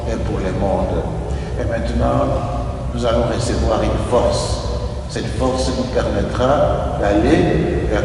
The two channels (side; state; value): both; identical; correlation 1.00